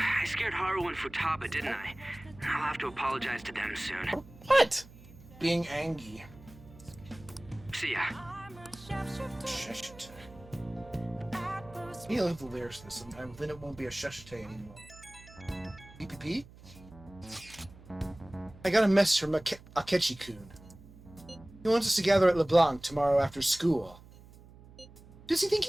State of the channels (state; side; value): noise; right; hum, 21 dB below the sound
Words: scared Haru and Futaba, didn't I? I'll have to apologize to them soon. What? Being angry. See ya. Sheshite. He'll have the lyrics to this sometime, then it won't be a Sheshite anymore. PPP? I got a message from Akechi-kun. He wants us to gather at LeBlanc tomorrow after school. Who does he think